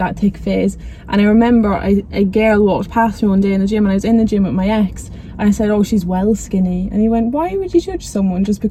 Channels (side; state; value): both; identical; correlation 1.00